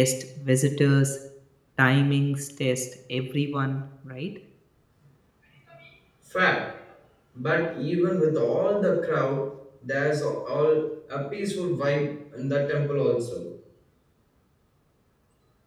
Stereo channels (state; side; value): identical; both; correlation 1.00